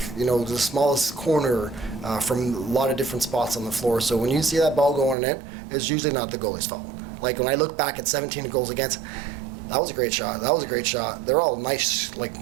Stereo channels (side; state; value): left; drops out; at 5.2 s